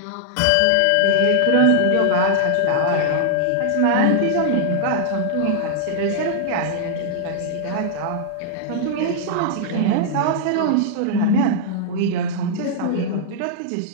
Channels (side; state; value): both; different; correlation -0.01